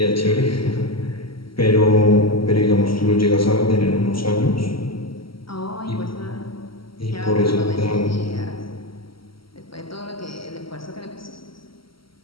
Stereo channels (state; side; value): late; right; 0.74 ms